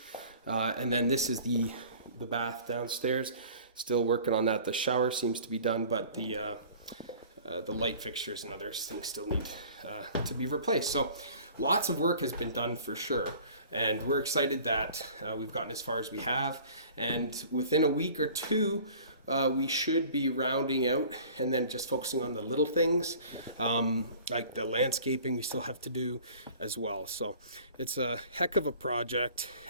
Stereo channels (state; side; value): inverted; both; correlation -0.47